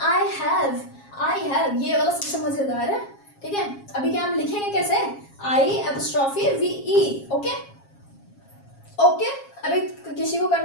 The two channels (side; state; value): right; late; 7.3 ms